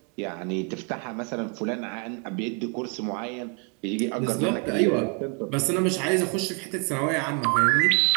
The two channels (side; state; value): left; quieter; 37.7 dB